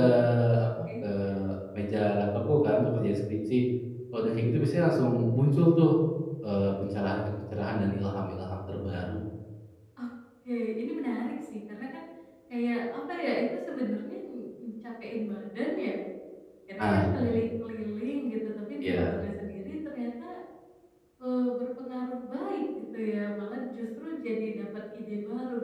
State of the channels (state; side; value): identical; both; correlation 1.00